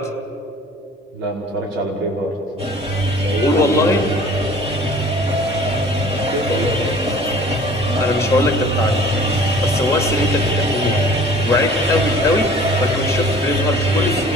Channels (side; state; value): both; normal; correlation 0.49